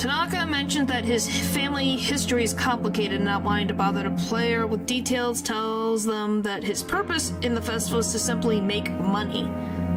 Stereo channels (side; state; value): both; identical; correlation 1.00